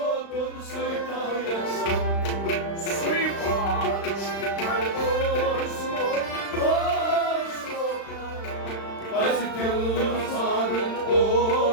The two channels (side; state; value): right; late; 35 ms